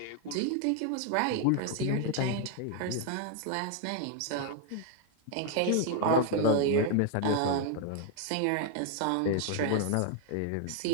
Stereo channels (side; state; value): both; different; correlation 0.00